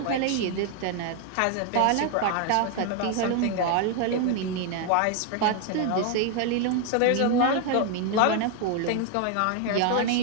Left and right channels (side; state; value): both; different; correlation 0.00